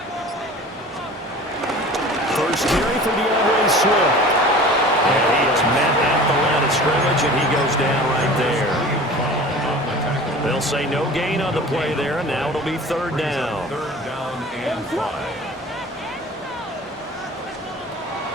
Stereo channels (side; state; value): both; normal; correlation 0.41